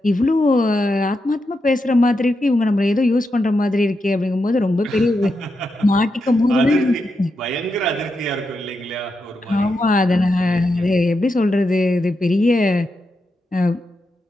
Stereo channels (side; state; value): both; normal; correlation 0.86